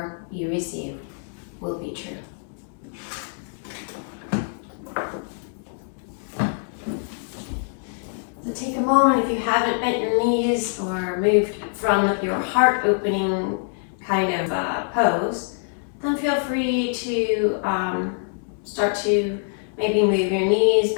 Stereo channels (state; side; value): silent; right; 62 dB below the other